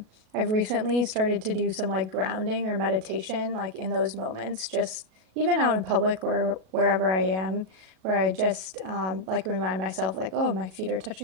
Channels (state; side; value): late; left; 37 ms